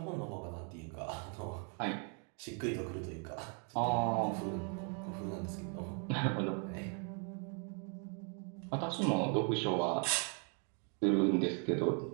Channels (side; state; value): left; quieter; 39.6 dB